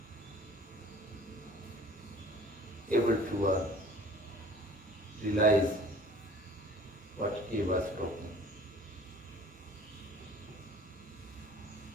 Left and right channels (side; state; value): both; normal; correlation 0.49